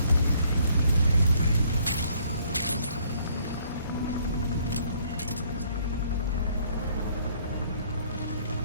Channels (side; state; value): both; inverted; correlation -0.64